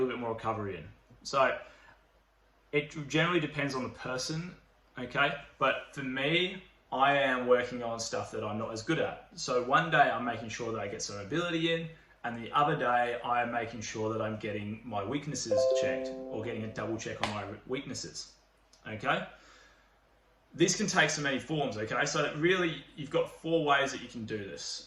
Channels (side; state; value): both; identical; correlation 1.00